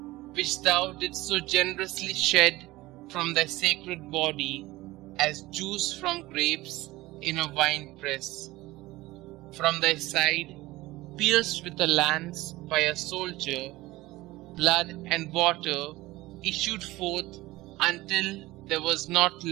which thou didst so generously shed from thy sacred body as juice from grapes in a wine press. From thy side, pierced with a lance by a soldier, blood and water issued forth until there was not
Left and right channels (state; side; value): quieter; left; 18.9 dB